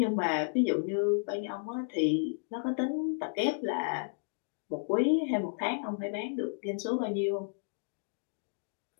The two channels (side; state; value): right; silent; digital silence